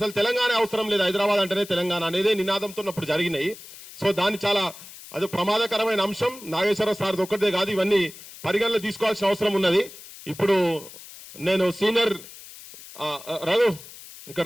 తెలంగాణ అవసరం లేదు, హైదరాబాద్ అంటేనే తెలంగాణ అనేది నినాదంతో అప్పుడు జరిగినాయి. సో దాన్ని చాలా అది ప్రమాదకరమైన అంశం. నాగేశ్వరరావు సార్ ఒక్కటే కాదు, ఇవన్నీ పరిగణలో తీసుకోవాల్సిన అవసరం ఉన్నది. ఇప్పుడు నేను సీనియర్ రఘు ఇక్కడ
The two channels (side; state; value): left; noise; hiss, 17 dB below the sound